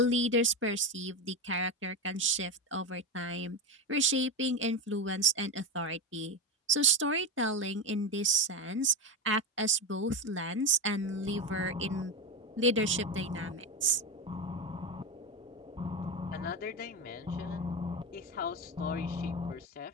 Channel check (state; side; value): normal; both; correlation 0.15